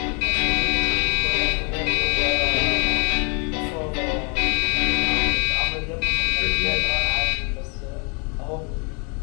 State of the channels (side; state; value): right; quieter; 34.0 dB